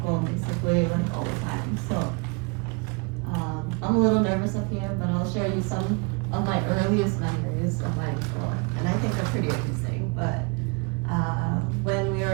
basically like all the time. So I'm a little nervous up here, but I'll share you some of my earliest memories of my uncle, and I think they're pretty amazing. But when we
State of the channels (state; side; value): quieter; left; 31.8 dB